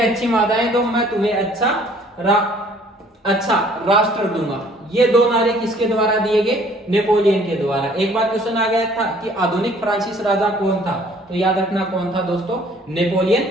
माताएं दो, मैं तुम्हें अच्छा राष्ट्र दूंगा। ये दो नारे किसके द्वारा दिए गए? नेपोलियन के द्वारा। एक बार क्वेश्चन आ गया था कि आधुनिक फ्रांसीसी राजा कौन था, तो याद रखना कौन था दोस्तों? Napoleon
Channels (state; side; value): normal; both; correlation 0.57